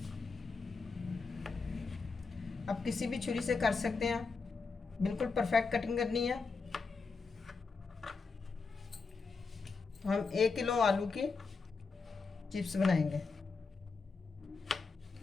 अब किसी भी छुरी से कर सकते हैं, बिल्कुल परफेक्ट कटिंग करनी है। तो हम 1 किलो आलू की चिप्स बनाएंगे।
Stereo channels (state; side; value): quieter; right; 4.5 dB